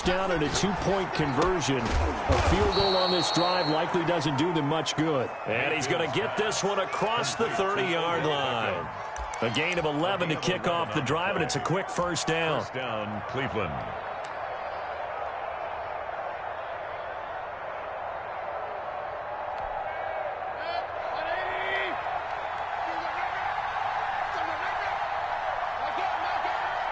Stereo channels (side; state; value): both; identical; correlation 1.00